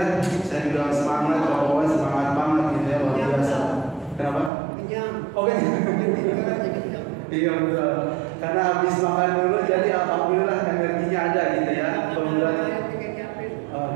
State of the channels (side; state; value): left; drops out; at 4.5 s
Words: Saya juga semangat, pokoknya semangat banget gitu ya, luar biasa. Kenapa? Oke. Iya betul. Karena habis makan dulu jadi alhamdulillah energinya ada gitu ya. Kemudian